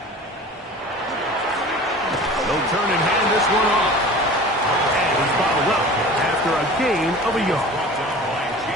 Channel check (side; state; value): both; normal; correlation 0.40